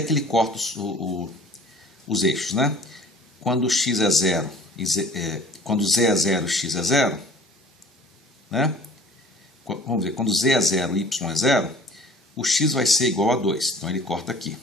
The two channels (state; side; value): normal; both; correlation 0.48